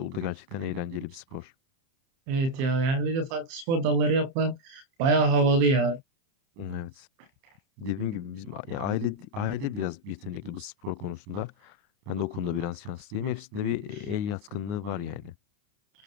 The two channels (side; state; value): left; late; 30 ms